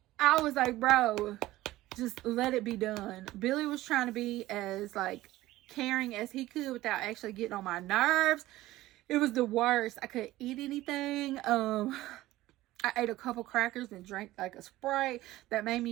I was like, bro, just let it be done. Billy was trying to be as like caring as he could without actually getting on my nerves. It was the worst. I couldn't eat anything. I ate a couple crackers and drank like a Sprite that made me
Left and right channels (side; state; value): left; quieter; 16.6 dB